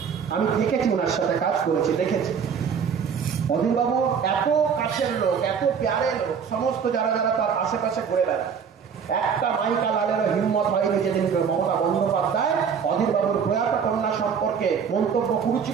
আমি দেখেছি, ওনার সাথে কাজ করেছি, দেখেছি। অধীরবাবু এত কাছের লোক, এত প্যারে লোক, সমস্ত যারা যারা তার আশেপাশে ঘুরে বেড়ায়, একটা মাইকা লালেরও হিম্মত হয়নি যেদিন মমতা বন্দ্যোপাধ্যায় অধীরবাবুর প্রয়াত কন্যা সম্পর্কে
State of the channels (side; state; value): left; quieter; 6.8 dB